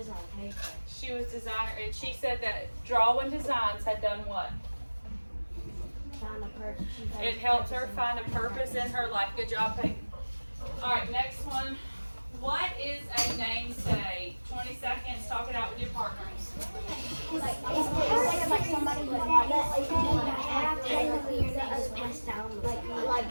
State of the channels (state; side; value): inverted; both; correlation -1.00